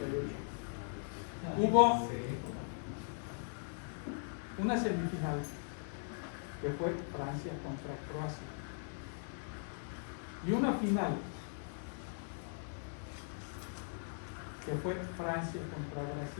hubo una semifinal que fue Francia contra Croacia y una final que fue Francia contra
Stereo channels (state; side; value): silent; right; digital silence